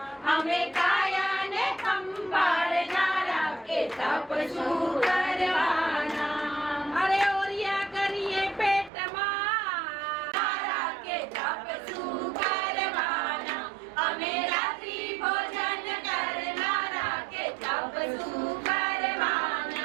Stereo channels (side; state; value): left; drops out; at 8.9 s